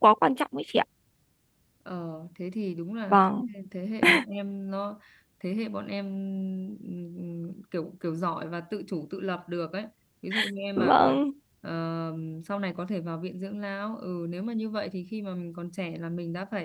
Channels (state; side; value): identical; both; correlation 1.00